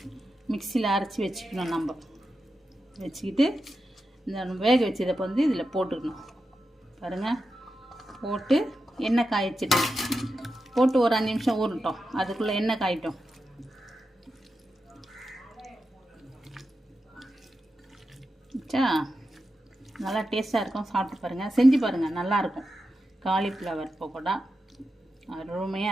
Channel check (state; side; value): normal; both; correlation 0.89